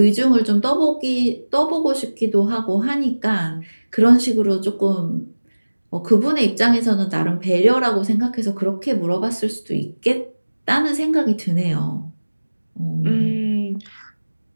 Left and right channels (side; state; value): both; inverted; correlation -1.00